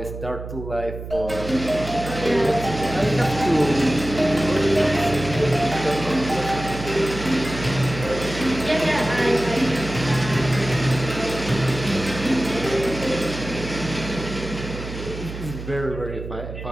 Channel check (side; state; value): right; noise; hum, 9 dB below the sound